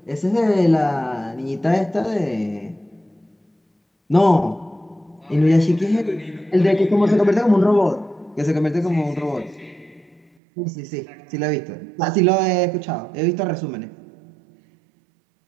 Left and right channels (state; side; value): drops out; left; at 10.3 s